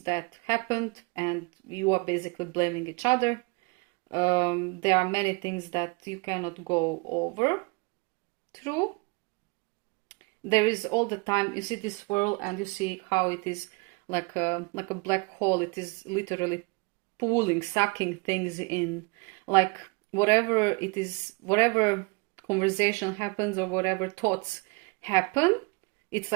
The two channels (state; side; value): quieter; left; 29.6 dB